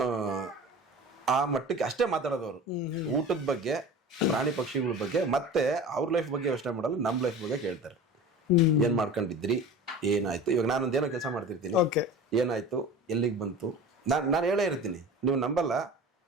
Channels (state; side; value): normal; both; correlation 0.36